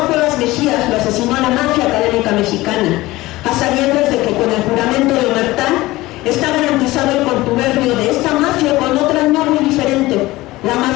Cuevas Mejías lo asesinó la mafia académica mexicana, a sabiendas de que con el juramento de Omertá está garantizado el contubernio de esta mafia con otra no muy diferente, la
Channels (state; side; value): quieter; right; 18.8 dB